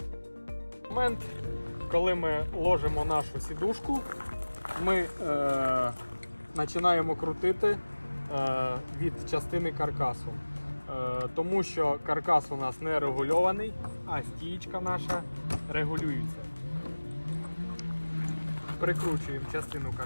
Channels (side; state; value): both; inverted; correlation -1.00